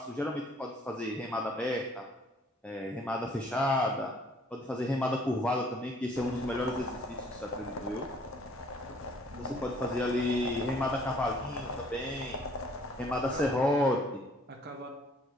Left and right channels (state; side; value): normal; both; correlation 0.59